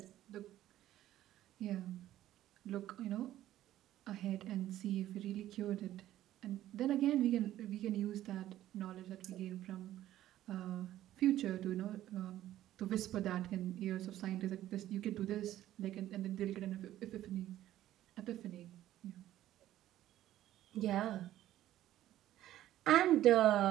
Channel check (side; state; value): left; quieter; 13.4 dB